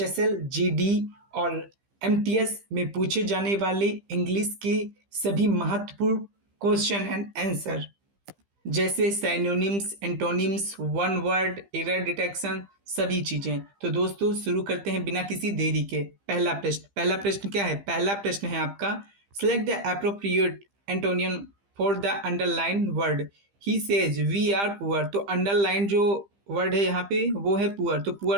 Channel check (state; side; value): late; left; 15 ms